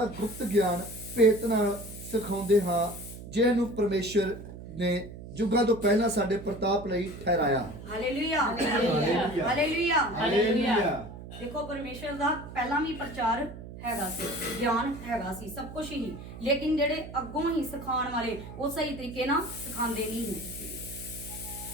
ਗੁਪਤ ਗਿਆਨ ਭੇਤ ਨਾਲ ਸਿਖਾਉਂਦੇ ਹਾਂ, ਜਿਹਨੂੰ ਪਰਮੇਸ਼ਰ ਨੇ ਯੁੱਗਾਂ ਤੋਂ ਪਹਿਲਾਂ ਸਾਡੇ ਪ੍ਰਤਾਪ ਲਈ ਠਹਿਰਾਇਆ। Hallelujah hallelujah hallelujah hallelujah. ਦੇਖੋ, ਪਰਮੇਸ਼ਰ ਦਾ ਪਹਿਲਾਂ ਵੀ ਪ੍ਰਚਾਰ ਹੈਗਾ ਸੀ, ਗਿਆਨ ਹੈਗਾ ਸੀ, ਸਭ ਕੁਝ ਹੀ। ਲੇਕਿਨ ਜਿਹੜੇ ਅੱਗੋਂ ਹੀ ਸਿਖਾਉਣ ਵਾਲੇ ਉਹ ਸਹੀ ਤਰੀਕੇ ਨਾਲ ਸਿਖਾਉਂਦੇ ਨਹੀਂ ਸੀ।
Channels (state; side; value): noise; right; hum, 13 dB below the sound